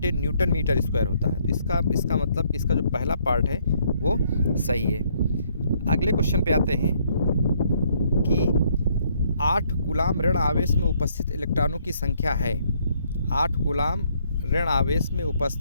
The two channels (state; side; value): inverted; both; correlation -0.68